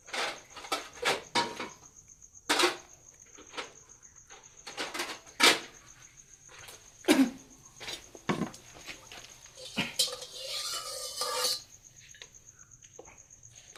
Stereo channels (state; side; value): identical; both; correlation 1.00